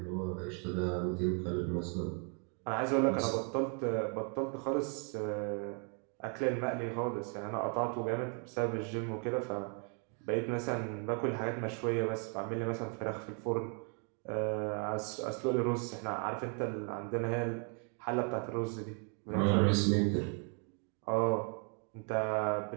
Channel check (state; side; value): quieter; left; 39.2 dB